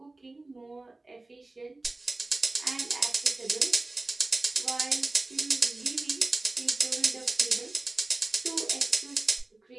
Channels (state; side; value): quieter; left; 3.1 dB